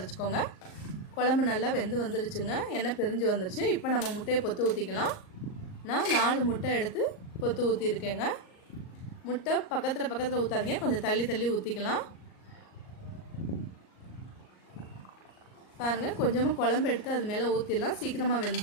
குழம்பு நல்லா வெந்து வந்துருச்சுங்க. எண்ணெய் பிரிஞ்சு வந்துருச்சு. இப்போ நம்ம முட்டையை பொத்து ஊற்றிக்கலாம். நான் 4 முட்டை எடுத்து பொத்து ஊற்றிருக்கேங்க. முட்டை பக்கத்தில் ஊற்றாதீங்க, கொஞ்சம் தள்ளி தள்ளி ஊற்றிக்கலாம். பாருங்கள், கொஞ்சமாக குழம்பு எடுத்து அது மேலே ஊற்றிடலாம். சீக்கிரமாக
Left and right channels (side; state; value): right; late; 38 ms